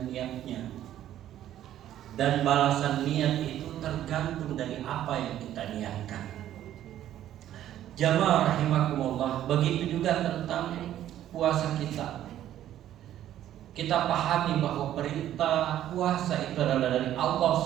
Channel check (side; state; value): left; quieter; 12.0 dB